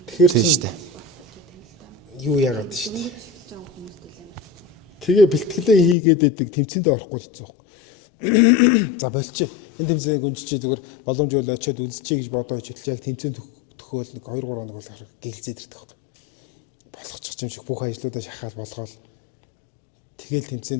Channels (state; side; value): drops out; right; at 6.0 s